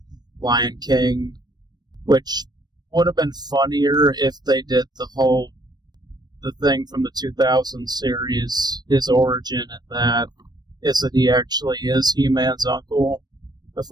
Lion King, which would have been funnier if they did the thing from the 2000 series, his origin, and that is that he actually is He-Man's uncle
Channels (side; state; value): left; late; 0.20 ms